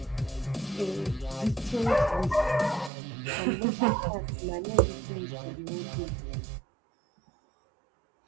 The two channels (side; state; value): left; drops out; at 2.9 s